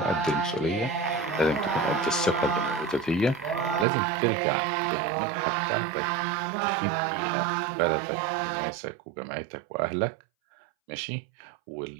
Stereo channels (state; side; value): drops out; left; at 3.9 s